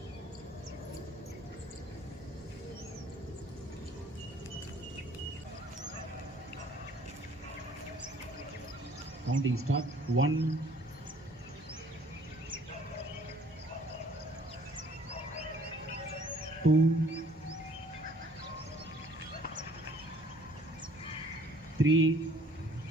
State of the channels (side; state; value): both; normal; correlation 0.57